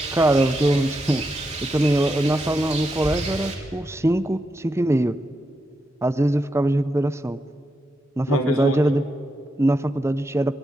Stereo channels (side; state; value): both; normal; correlation 0.85